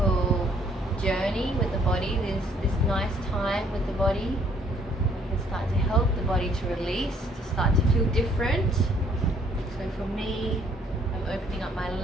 journey with the body, this nice time with the body. You can start to help the body to release, to start to feel different. So for me, I'm opening up my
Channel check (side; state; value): both; normal; correlation 0.64